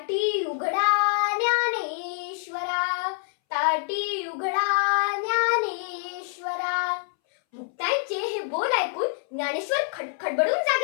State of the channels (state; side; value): silent; right; 61 dB below the other